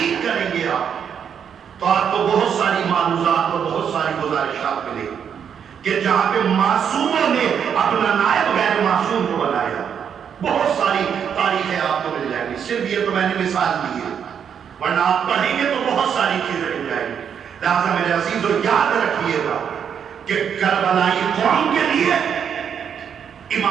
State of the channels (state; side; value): quieter; left; 7.8 dB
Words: کریں گے آپ, تو آپ کو بہت ساری معلومات اور بہت ساری گزارشات ملیں گی کہ جہاں پہ معصوموں نے اپنا نائب غیر معصوم کو بنایا, بہت ساری تاریخیں آپ کو مل جائیں گی. صرف یہ تو میں نے مثال دی ہے, ورنہ آپ پڑھیں گے تو بہت ساری چیزیں مل جائیں گی. لہٰذا میرے عزیزوں یاد رکھیے گا کہ کربلائی قوم کے لیے